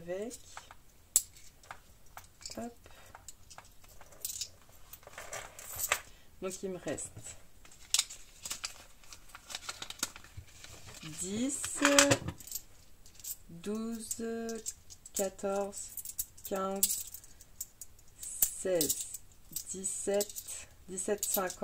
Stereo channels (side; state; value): both; identical; correlation 1.00